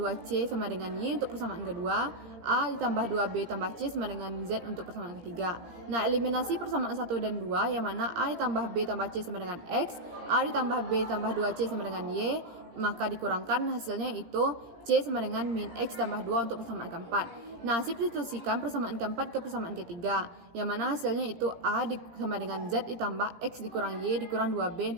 sama dengan Y untuk persamaan kedua, A ditambah 2B tambah C sama dengan Z untuk persamaan ketiga. Nah, eliminasi persamaan 1 dan 2 yang mana A ditambah B tambah C sama dengan X, A ditambah B tambah 2C sama dengan Y, maka dikurangkan hasilnya itu C sama dengan min X tambah 2 untuk persamaan keempat. Nah, substitusikan persamaan keempat ke persamaan ketiga, yang mana hasilnya itu A sama dengan Z ditambah X dikurang Y dikurang 2B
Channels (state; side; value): late; left; 17 ms